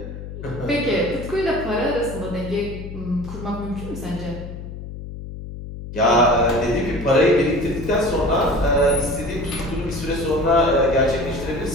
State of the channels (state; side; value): noise; left; hum, 10 dB below the sound